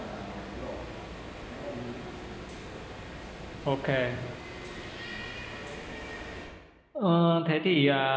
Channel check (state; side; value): identical; both; correlation 1.00